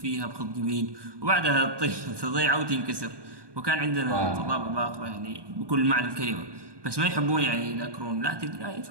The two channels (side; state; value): left; late; 1.2 ms